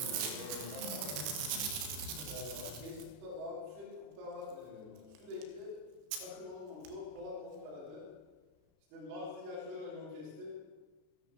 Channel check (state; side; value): late; left; 32 ms